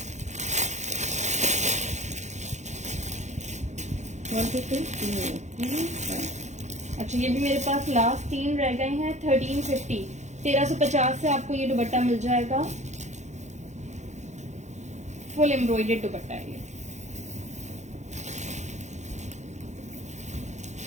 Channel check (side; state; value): left; late; 0.34 ms